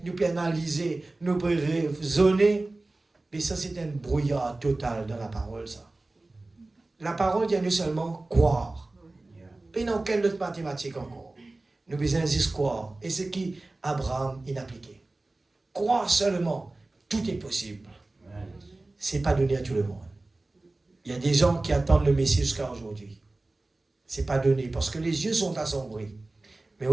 nous pouvons analyser, nous pouvons raisonner. Mais ça, c'est un brouillard total dans la parole, ça. La parole vient nous seulement croire. Et dans quelle autre mathématique encore? Nous besoin juste croire. Et ce qui Abraham il appliqué. Croire seulement, tout est possible. Ce n'est pas donné à tout le monde. Il y a des gens qui attendent le Messie jusqu'à aujourd'hui. Ce n'est pas donné parce que les yeux sont assombris. Mais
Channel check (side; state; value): left; quieter; 3.0 dB